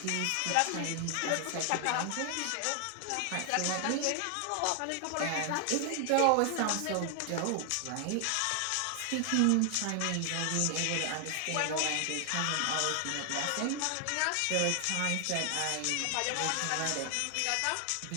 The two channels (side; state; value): both; different; correlation 0.00